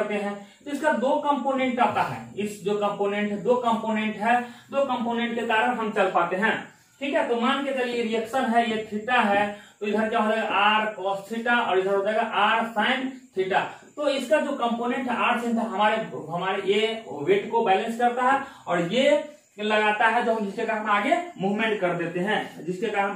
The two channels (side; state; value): both; identical; correlation 1.00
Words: हैं। तो इसका दो कंपोनेंट आता है, इस जो कंपोनेंट है, दो कंपोनेंट है, दो कंपोनेंट के कारण हम चल पाते हैं। ठीक है, तो मान के चलिए रिएक्शन है, ये थीटा है, तो इधर क्या हो जाएगा आर कॉस थीटा और इधर हो जाएगा आर साइन थीटा। तो इसका जो कंपोनेंट है आर साइन हमारे ये वेट को बैलेंस करता है और ये लगाता है, जो हम जिसके कारण हम आगे मूवमेंट कर देते हैं, जिसके कारण